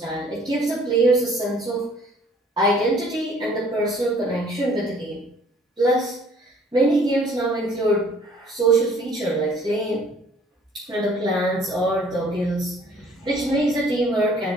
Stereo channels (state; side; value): normal; both; correlation 0.57